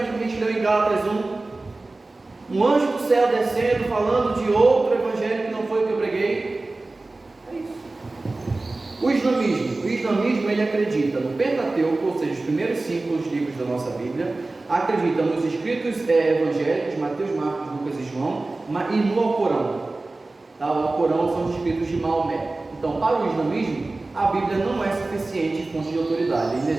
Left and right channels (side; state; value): left; quieter; 3.2 dB